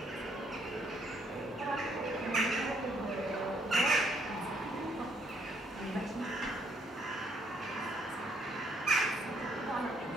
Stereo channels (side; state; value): both; normal; correlation 0.70